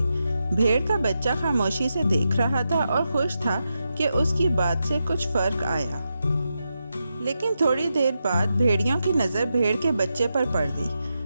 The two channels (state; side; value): inverted; both; correlation -0.87